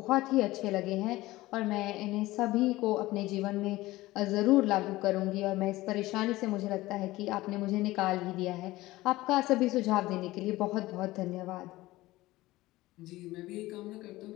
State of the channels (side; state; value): right; quieter; 18.2 dB